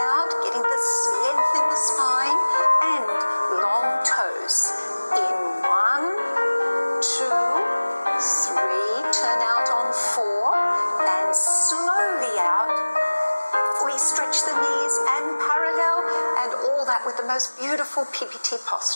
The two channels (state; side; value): inverted; both; correlation -1.00